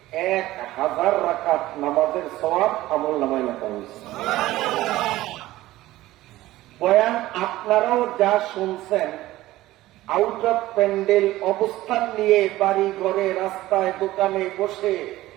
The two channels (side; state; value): left; quieter; 16.5 dB